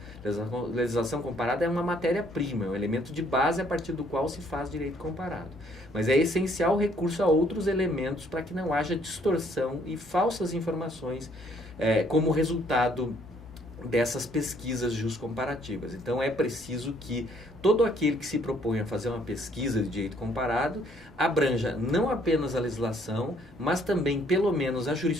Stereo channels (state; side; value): normal; both; correlation 0.65